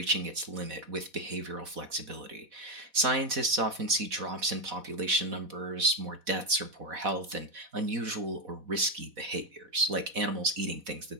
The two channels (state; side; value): late; left; 4.1 ms